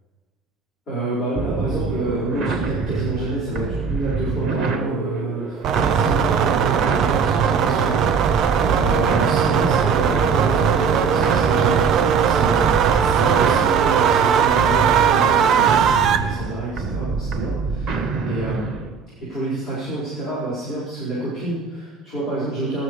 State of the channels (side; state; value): left; quieter; 5.8 dB